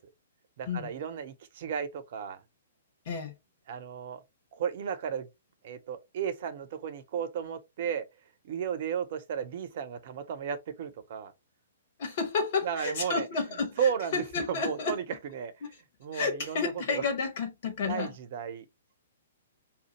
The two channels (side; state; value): both; inverted; correlation -0.44